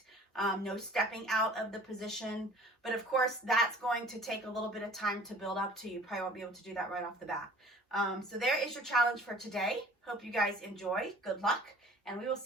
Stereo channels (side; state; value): both; normal; correlation 0.48